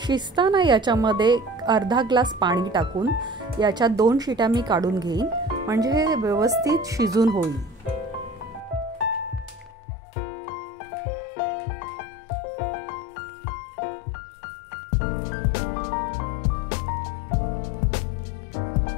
शिजताना याच्यामध्ये अर्धा ग्लास पाणी टाकून याच्या 2 शिट्या मी काढून घेईन, म्हणजे हे व्यवस्थित शिजून होईल.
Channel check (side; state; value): right; drops out; at 9.7 s